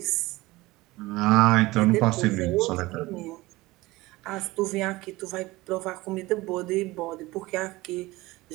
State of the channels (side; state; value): left; quieter; 20.0 dB